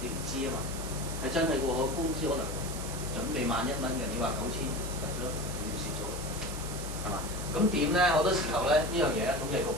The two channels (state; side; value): noise; right; hiss, 10 dB below the sound